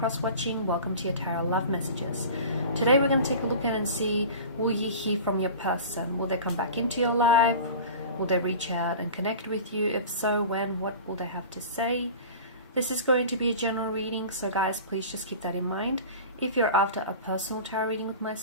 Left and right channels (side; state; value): both; inverted; correlation -0.36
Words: welcome to your Tarot Love Messages. Today we're going to take a look at and see, will you hear from your person? Will they come back into your life? Will they reach out and connect with you? If so, when? What will they have to say? This is going to be a general reading, so guys, please just keep that in mind. If you're after a personal tarot reading with